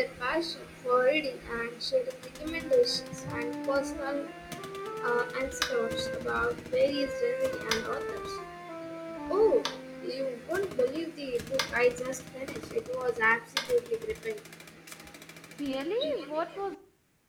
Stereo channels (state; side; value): identical; both; correlation 1.00